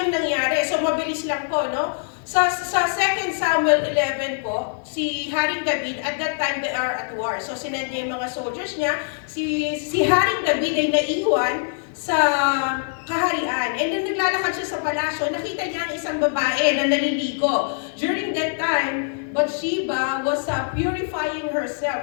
nangyari. So, mabilis lang po, no? Sa 2 Samuel 11 po, si Haring David, at that time they are at war. So sinend niya yung mga soldiers niya. Si Haring David ay naiwan sa kaharian. And then naglalakad siya sa palasyo, nakita niya ang isang babae na naliligo. During that time, Bathsheba was purifying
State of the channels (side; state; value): right; silent; digital silence